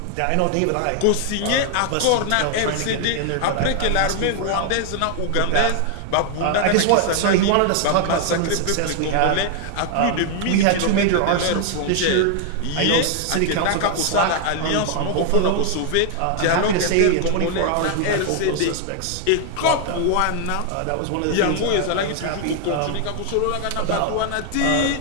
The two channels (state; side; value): different; both; correlation 0.00